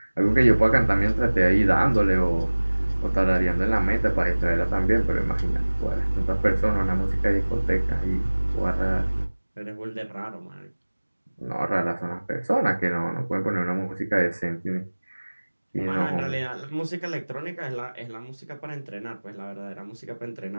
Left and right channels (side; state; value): both; inverted; correlation -1.00